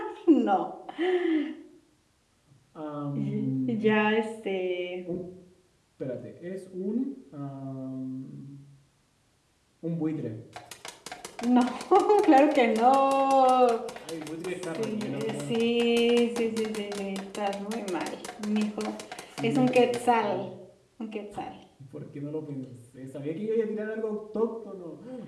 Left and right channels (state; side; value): identical; both; correlation 1.00